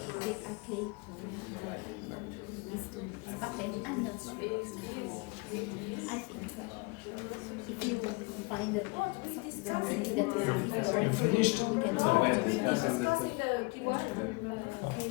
I think if you find that something that will be for information, we can take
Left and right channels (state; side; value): quieter; right; 27.7 dB